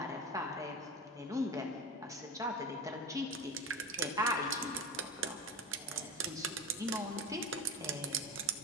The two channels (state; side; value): normal; both; correlation 0.23